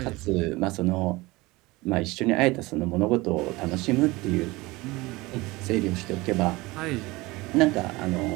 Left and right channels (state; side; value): quieter; left; 21.7 dB